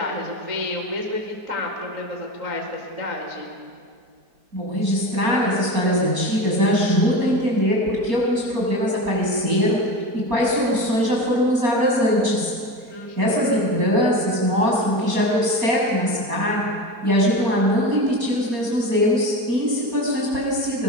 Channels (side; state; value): left; late; 4.3 ms